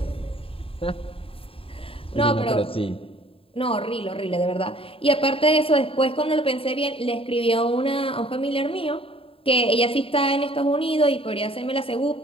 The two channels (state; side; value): late; right; 0.27 ms